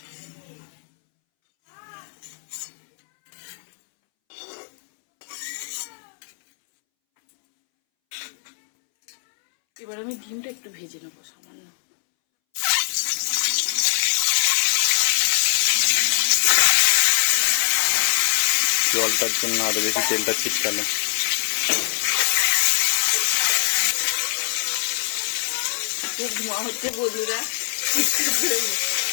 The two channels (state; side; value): silent; right; 64 dB below the other